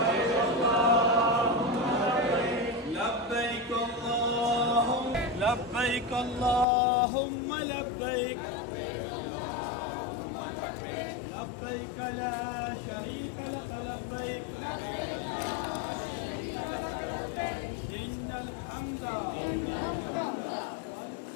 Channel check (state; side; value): drops out; right; at 6.7 s